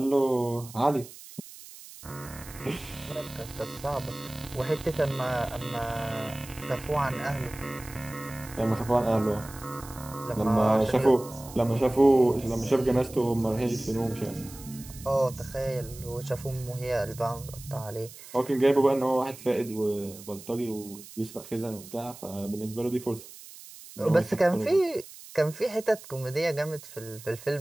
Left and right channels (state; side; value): noise; right; hiss, 17 dB below the sound